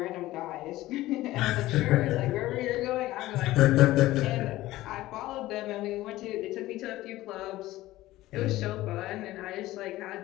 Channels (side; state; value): right; quieter; 16.6 dB